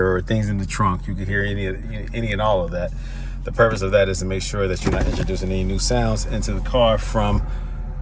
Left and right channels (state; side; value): identical; both; correlation 1.00